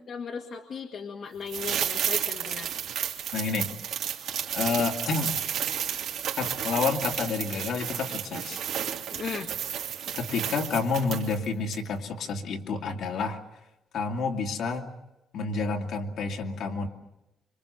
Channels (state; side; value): normal; both; correlation 0.58